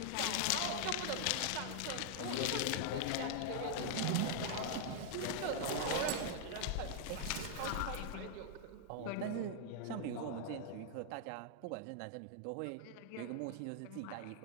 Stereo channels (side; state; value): both; different; correlation -0.01